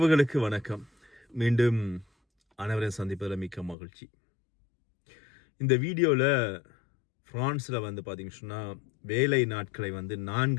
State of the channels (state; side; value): drops out; right; at 3.8 s